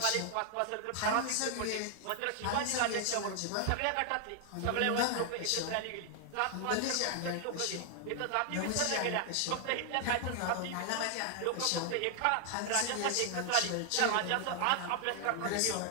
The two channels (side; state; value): both; different; correlation 0.00